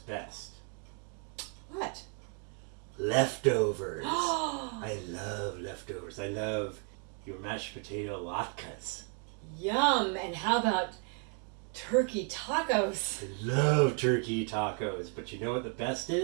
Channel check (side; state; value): left; quieter; 39.0 dB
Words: What? Leftovers. I love leftovers. I love your mashed potato latkes. Yum! And how about turkey tacos? I love turkey tacos, but you know what the best